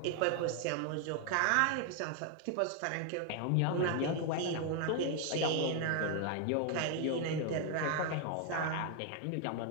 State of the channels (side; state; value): both; different; correlation 0.01